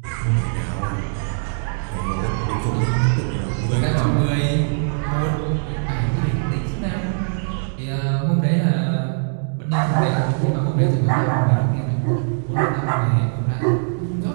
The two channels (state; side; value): silent; left; digital silence